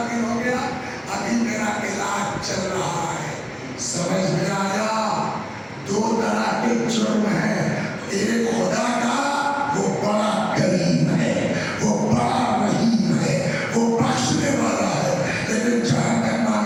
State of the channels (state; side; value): identical; both; correlation 1.00